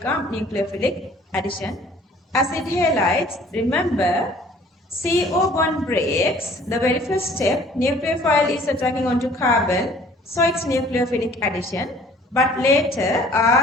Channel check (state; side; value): normal; both; correlation 0.53